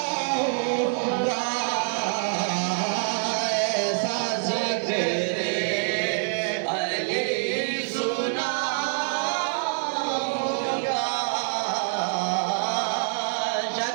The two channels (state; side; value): silent; left; 61 dB below the other